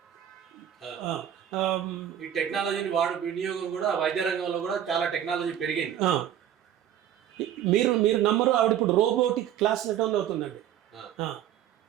ఈ టెక్నాలజీని వినియోగం కూడా వైద్య రంగంలో కూడా చాలా టెక్నాలజీ పెరిగింది. మీరు నమ్మరు, ఆవిడ ఇప్పుడు రోబోటిక్ క్లాస్ అటెండ్ అవుతుందండి.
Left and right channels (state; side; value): quieter; left; 10.6 dB